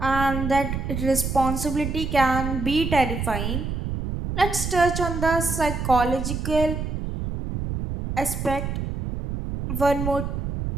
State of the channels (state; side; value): noise; right; rumble, 4 dB below the sound